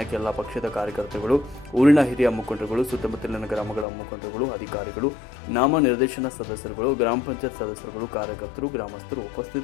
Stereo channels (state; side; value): drops out; right; at 3.9 s